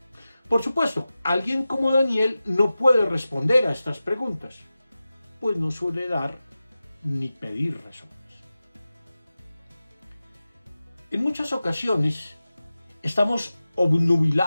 Por supuesto, alguien como Daniel no puede responder a estas preguntas, pues no suele dar ni pedir razones. En muchas ocasiones estamos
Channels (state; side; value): inverted; both; correlation -0.94